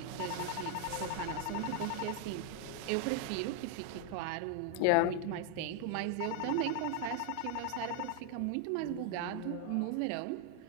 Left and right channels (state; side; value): different; both; correlation 0.00